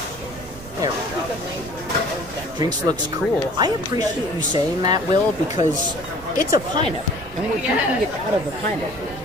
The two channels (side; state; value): right; noise; rumble, 16 dB below the sound